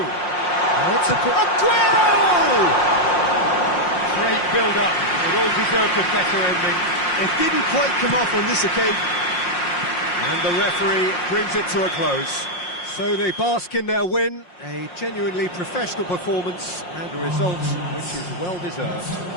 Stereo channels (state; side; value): late; right; 5.6 ms